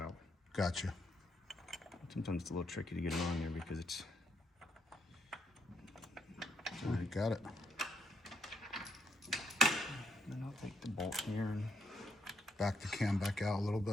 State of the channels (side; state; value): both; normal; correlation 0.76